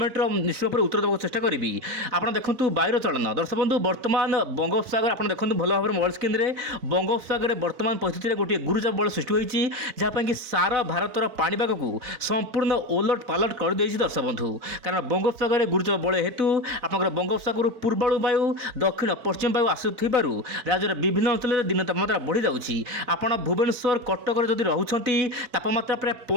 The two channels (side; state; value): left; late; 4.0 ms